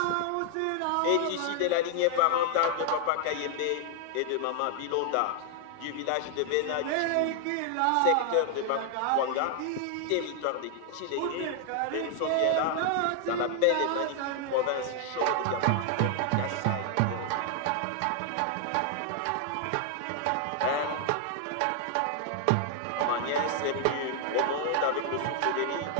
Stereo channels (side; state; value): both; different; correlation 0.00